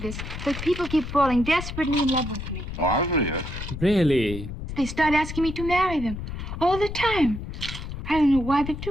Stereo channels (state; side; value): noise; left; rumble, 8 dB below the sound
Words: this, but people keep falling desperately in love with me. Oh, I believe it. Really? They start asking me to marry them all the time. I don't know why they